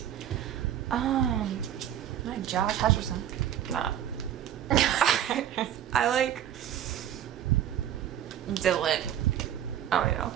Like Josh Hutcherson. Nah. I like Dylan. I don't know.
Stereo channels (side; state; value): left; quieter; 10.7 dB